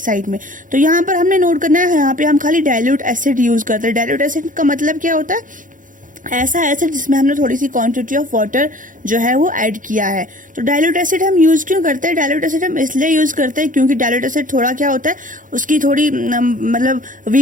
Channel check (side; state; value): left; late; 0.38 ms